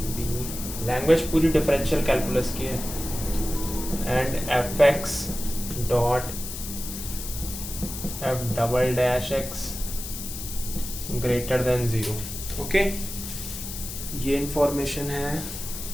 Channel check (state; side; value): noise; left; hiss, 8 dB below the sound